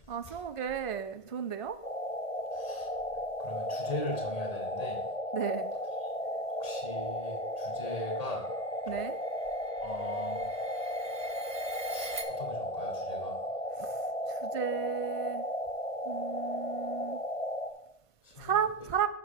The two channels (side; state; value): right; late; 1.6 ms